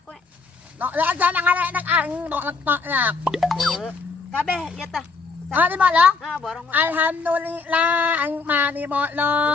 kowe. Tok lah aja nang anak ang tok lah. Kabeh ya tah. Di bolong? Borong. Alhamdulillah, ang mani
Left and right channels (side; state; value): right; quieter; 4.3 dB